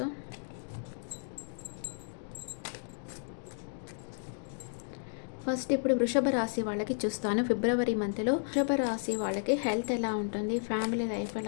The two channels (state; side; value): silent; right; digital silence